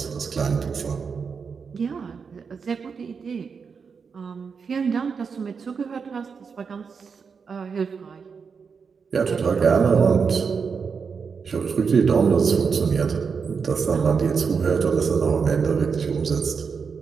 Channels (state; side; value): quieter; left; 5.7 dB